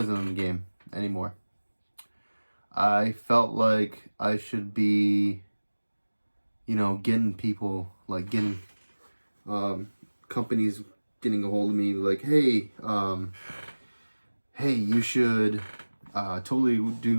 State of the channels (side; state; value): both; inverted; correlation -1.00